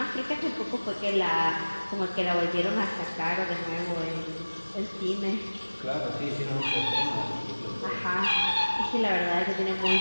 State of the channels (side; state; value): both; inverted; correlation -1.00